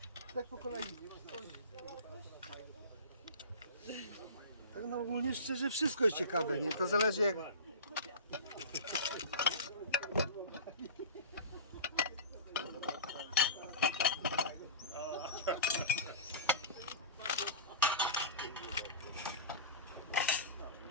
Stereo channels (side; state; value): both; inverted; correlation -0.30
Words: Tak po kolei. Tak no ogólnie szczerze wszystko jest ciekawe, nie? To zależy jak...